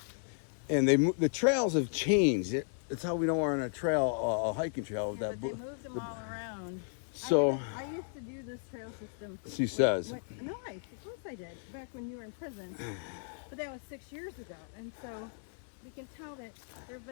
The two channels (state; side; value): silent; right; 55 dB below the other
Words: the trails have changed. It's how we know we're on a trail, a hiking trail. They moved them all around. So I used to do this trail system. she says. No, of course I did. Back when you were in prison. But that was 6 years ago. And so you can tell that there's